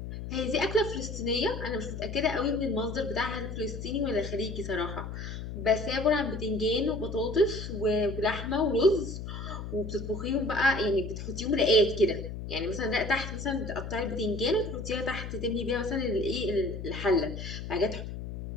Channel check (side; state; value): left; noise; hum, 7 dB below the sound